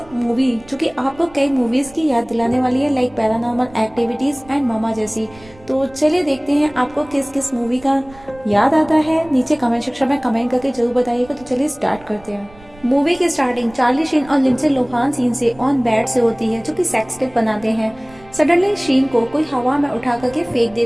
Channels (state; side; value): noise; right; rumble, 23 dB below the sound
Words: मूवी जो कि आपको कई मूवीज की याद दिलाने वाली है, लाइक पैरानॉर्मल एक्टिविटीज एंड मामा जैसी। तो चलिए देखते हैं आपको किस किस मूवी का याद आता है। नीचे कमेंट सेक्शन में कमेंट करके जरूर बताइएगा। तो चलिए स्टार्ट करते हैं। मूवी की स्टार्टिंग चार्ली शीन और लिंडसे लोहान सीन से ऑन बेड से होती है, जो कि सेक्स टेप बनाते हैं। सडनली शीन को कोई हवा में उठा करके फेंक